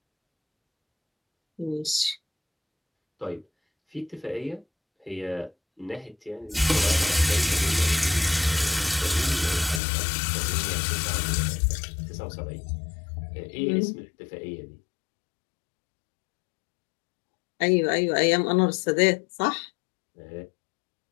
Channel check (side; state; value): right; drops out; at 9.8 s